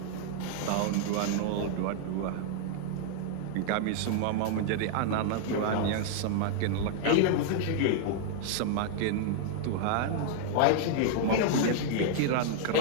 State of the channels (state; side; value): different; both; correlation 0.00